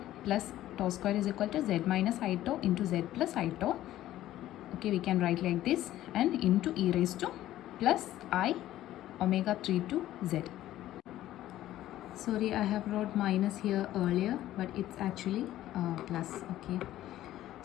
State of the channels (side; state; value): right; quieter; 13.9 dB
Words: plus tau square is equal to z minus I tau into z plus I tau. Okay, we can write like this, and into e raised to plus I omega 3 to z. Sorry, I have wrote minus here earlier, but it's actually plus. Okay,